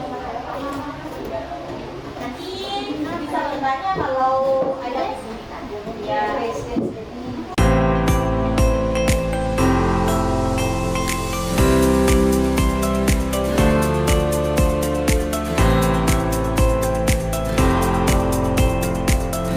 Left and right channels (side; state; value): both; identical; correlation 1.00